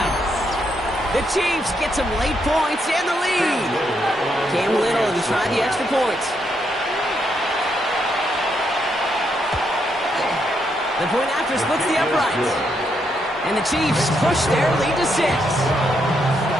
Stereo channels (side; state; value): both; normal; correlation 0.78